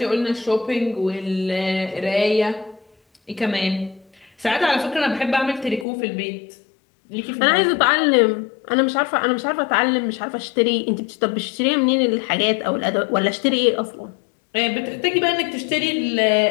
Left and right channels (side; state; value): right; drops out; at 5.9 s